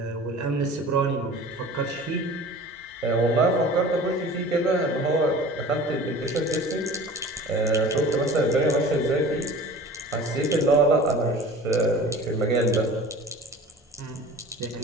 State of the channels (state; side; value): normal; both; correlation 0.41